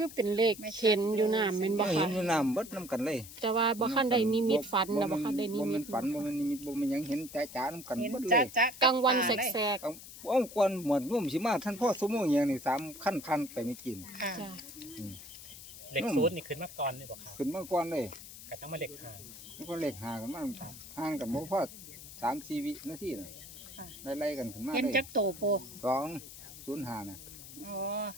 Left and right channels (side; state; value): left; noise; hiss, 14 dB below the sound